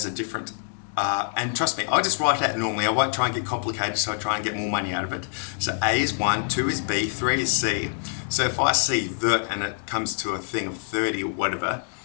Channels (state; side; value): silent; right; 60 dB below the other